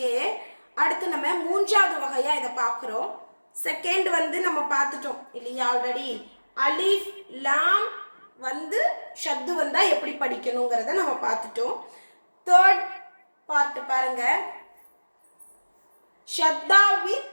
அடுத்து நம்ம மூன்றாவது வகையா இதை பார்க்குறோம். செகண்ட் நம்ம பார்த்துட்டோம் இல்லையா? ஆல்ரெடி அலிஃப் லாம் ஷத்து வந்தா எப்படி படிக்கணுங்கிறத நம்ம பார்த்துட்டோம். தேர்ட் பார்ட் பாருங்க, ஷத்தா வித்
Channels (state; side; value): inverted; both; correlation -1.00